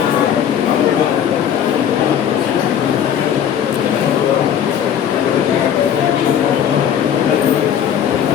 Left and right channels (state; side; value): quieter; right; 9.2 dB